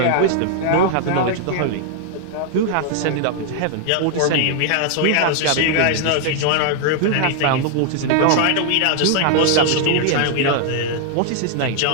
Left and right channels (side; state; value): both; different; correlation -0.01